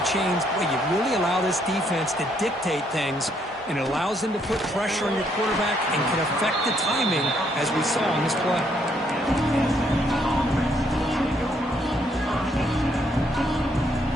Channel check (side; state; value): both; normal; correlation 0.71